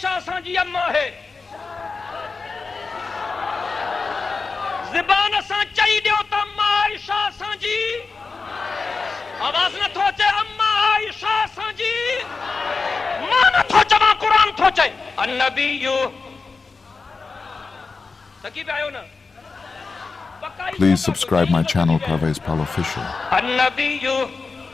سان جی اما ہے زبان سان چاہی دیو تا اما عائشہ سان جی آواز نہ تھو چے اما عائشہ سان جی ماں نہ تھو چما قرآن تھو چے النبیو تکی پہ آئیو نا Please subscribe my channel Parvez Pal Official. النبیو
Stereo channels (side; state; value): right; quieter; 4.3 dB